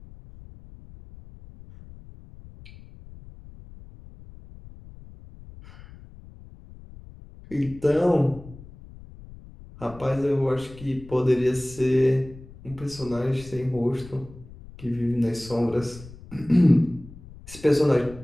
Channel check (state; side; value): noise; left; rumble, 18 dB below the sound